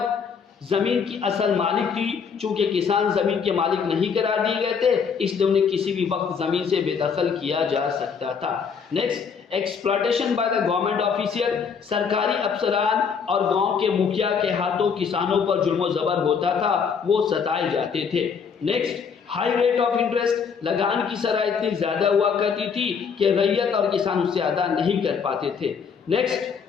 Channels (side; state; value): right; quieter; 6.3 dB